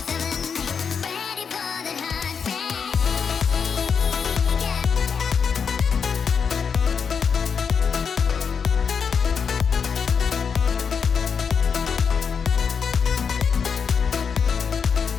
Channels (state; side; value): quieter; right; 6.3 dB